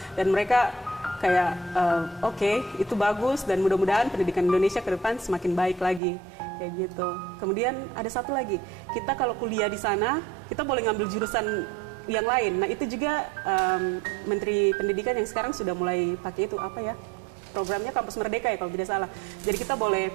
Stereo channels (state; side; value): drops out; left; at 6.0 s